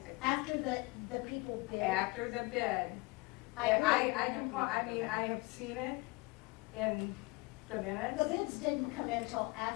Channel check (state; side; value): quieter; right; 25.8 dB